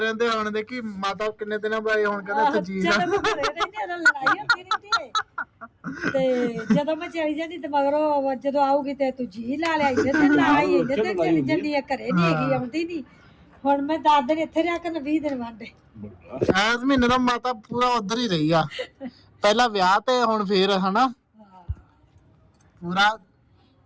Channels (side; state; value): both; identical; correlation 1.00